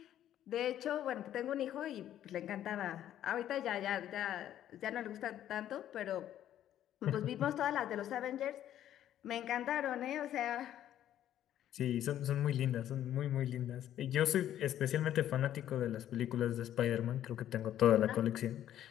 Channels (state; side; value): quieter; right; 11.5 dB